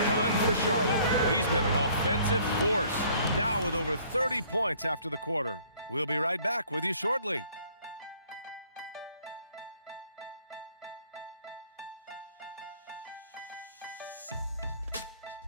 done for Charlotte. He's been an offensive force, now with over 30 points after the quarter. We'll be right back with you shortly.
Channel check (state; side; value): inverted; both; correlation -0.57